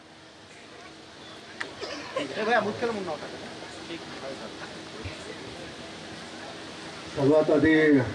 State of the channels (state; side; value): identical; both; correlation 1.00